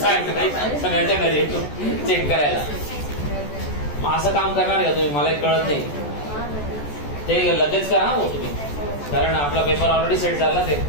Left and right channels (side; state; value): right; late; 14 ms